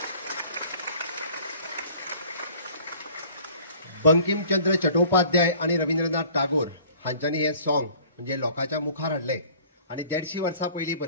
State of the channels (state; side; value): inverted; both; correlation -0.51